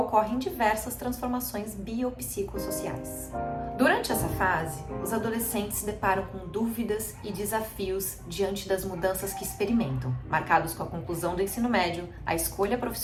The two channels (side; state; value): both; identical; correlation 1.00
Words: ocorrem diversas transformações biopsicossociais. Durante essa fase, os adolescentes se deparam com dúvidas e desafios diante das mudanças que experimentam, marcados com a conclusão do ensino médio, a escolha